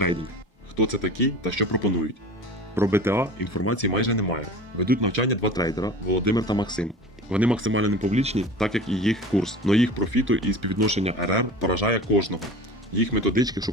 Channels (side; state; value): both; normal; correlation 0.37